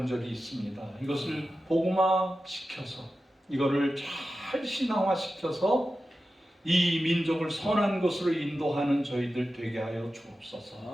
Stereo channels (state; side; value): normal; both; correlation 0.93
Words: 있습니다. 이것을 복음화시켜서, 이거를 잘 신앙화시켜서 이 민족을 선한 것으로 인도하는 저희들 되게 하여